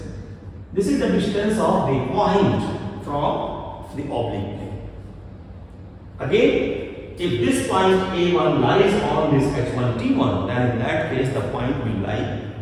This is the distance of the point from the oblique plane. Again, if this point A1 lies on this H1 T1, then in that case the point will lie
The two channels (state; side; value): identical; both; correlation 1.00